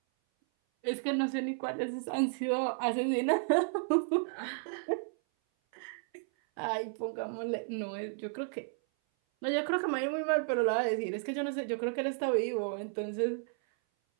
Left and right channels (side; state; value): left; silent; 56 dB below the other